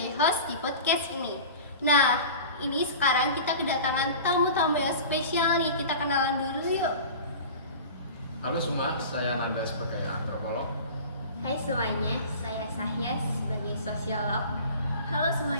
host di podcast ini. Nah, ini sekarang kita kedatangan tamu-tamu yang spesial nih. Kita kenalan dulu yuk. Halo semua, saya Nanda sebagai antropolog. Hai semuanya, saya Sahya sebagai sosiolog. Halo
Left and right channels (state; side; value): inverted; both; correlation -0.37